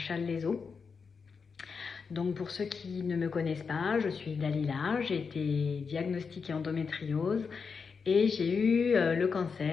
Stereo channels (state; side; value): quieter; right; 5.5 dB